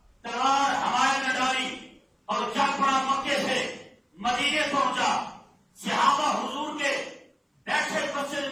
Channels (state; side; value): identical; both; correlation 1.00